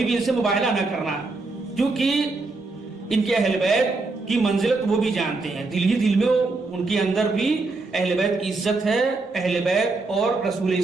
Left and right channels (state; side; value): quieter; left; 3.5 dB